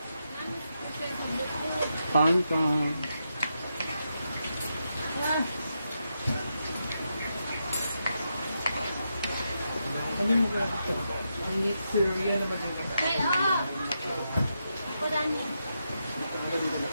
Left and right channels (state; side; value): inverted; both; correlation -0.84